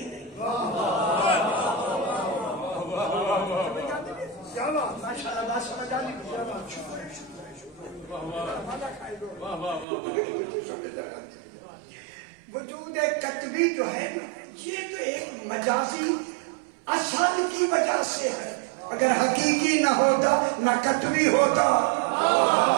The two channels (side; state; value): left; drops out; at 9.9 s